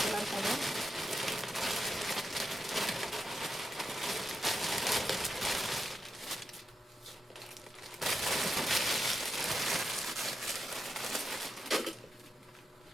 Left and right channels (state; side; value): normal; both; correlation 0.86